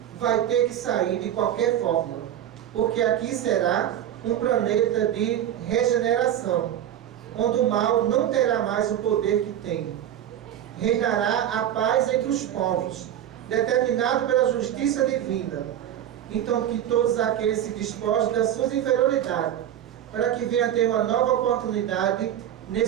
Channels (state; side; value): quieter; left; 10.9 dB